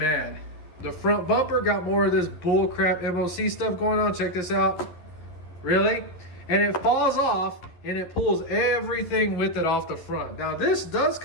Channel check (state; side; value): late; right; 11 ms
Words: The front bumper got more of this bull crap MOC stuff going on. Check this out. Really? And it falls off and it pulls everything with it off the front. Now this does